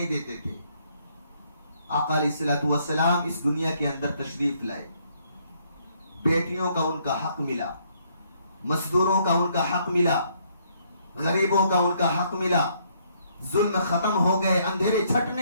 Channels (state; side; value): inverted; both; correlation -0.69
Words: دیتے تھے. آقا علیہ الصلوۃ والسلام اس دنیا کے اندر تشریف لائے, بیٹیوں کا ان کا حق ملا, مزدوروں کا ان کا حق ملا, غریبوں کا ان کا حق ملا, ظلم ختم ہو گئے, اندھیرے